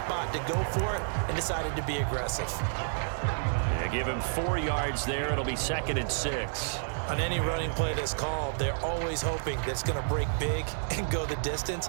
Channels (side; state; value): left; silent; 58 dB below the other